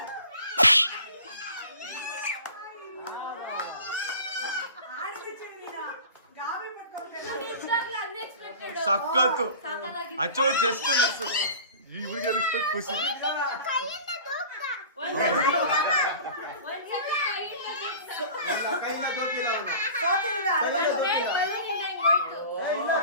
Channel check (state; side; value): inverted; both; correlation -0.40